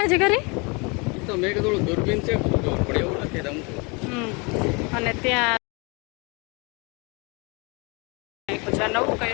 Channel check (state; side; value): quieter; right; 30.1 dB